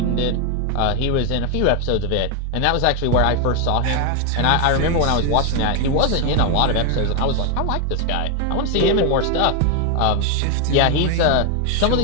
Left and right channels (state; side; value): different; both; correlation 0.01